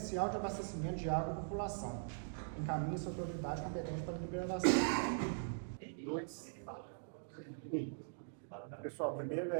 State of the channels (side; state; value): left; silent; digital silence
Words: de abastecimento de água à população. Encaminhe-se a autoridade competente para a deliberação. Pessoal, primeiro